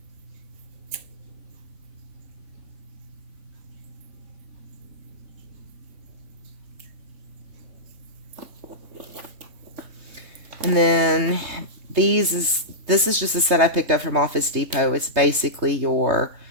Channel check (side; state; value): left; late; 3.5 ms